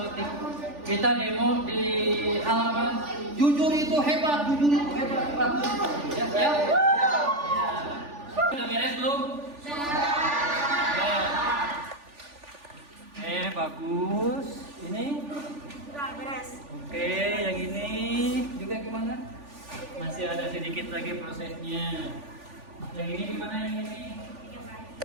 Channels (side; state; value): left; late; 3.4 ms